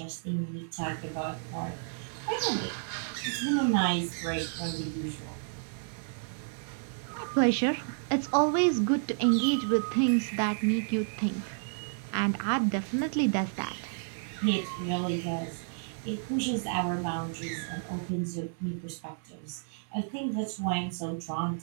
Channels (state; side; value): silent; left; digital silence